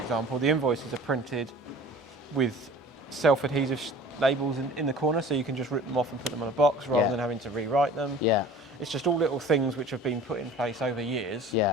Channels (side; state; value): both; normal; correlation 0.45